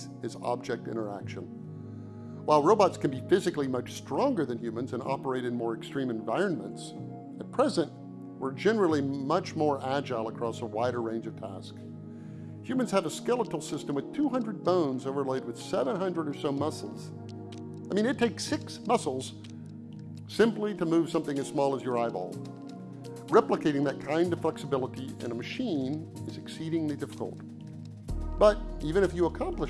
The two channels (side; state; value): both; identical; correlation 1.00